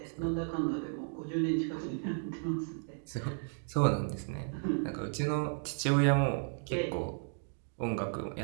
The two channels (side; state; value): left; silent; 55 dB below the other